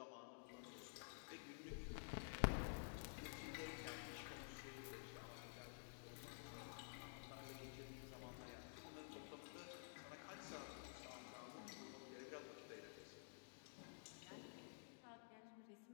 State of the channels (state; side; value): silent; right; digital silence